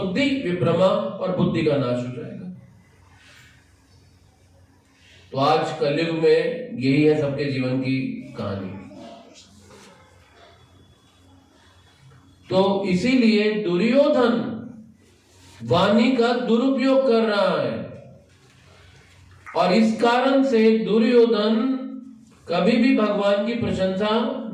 विभ्रमा, और बुद्धि का नाश हो जाएगा। तो आज कलयुग में यही है सबके जीवन की कहानी। तो इसीलिए दुर्योधन वाणी का दुरुपयोग कर रहा है, और इस कारण से दुर्योधन कभी भी भगवान की प्रशंसा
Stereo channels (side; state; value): both; identical; correlation 1.00